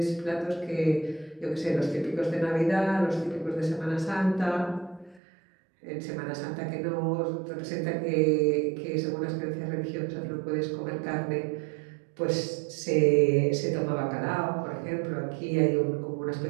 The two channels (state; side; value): drops out; left; at 5.2 s